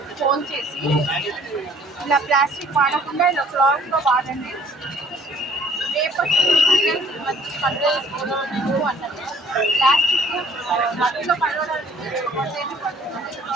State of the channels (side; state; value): both; normal; correlation 0.56